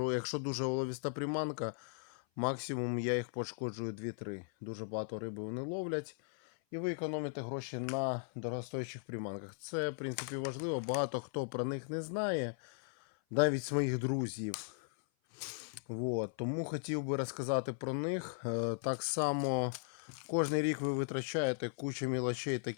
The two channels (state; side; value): silent; right; 53 dB below the other